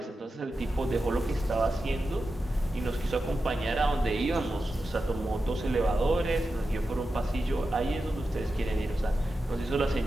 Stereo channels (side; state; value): both; normal; correlation 0.91